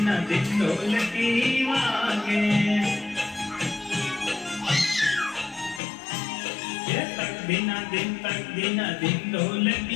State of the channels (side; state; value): right; drops out; at 5.8 s